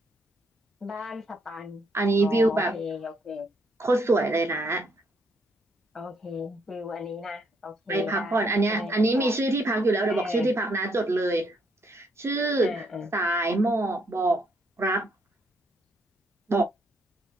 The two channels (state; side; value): normal; both; correlation 0.72